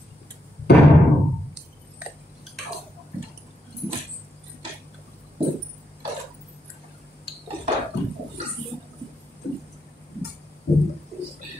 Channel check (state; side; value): normal; both; correlation 0.81